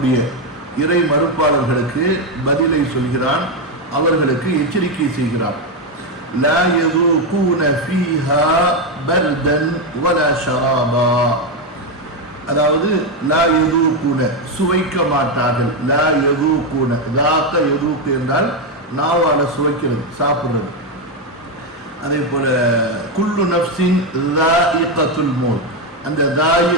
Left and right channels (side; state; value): both; normal; correlation 0.07